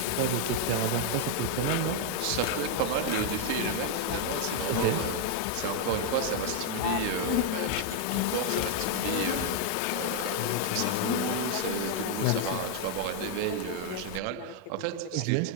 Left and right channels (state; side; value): different; both; correlation 0.00